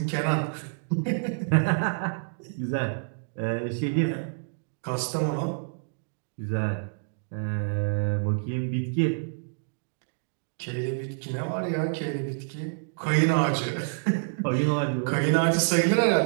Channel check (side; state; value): left; silent; digital silence